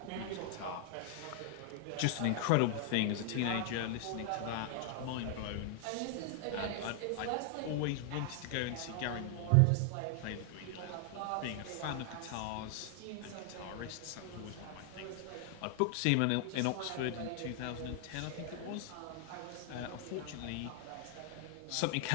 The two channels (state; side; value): different; both; correlation 0.00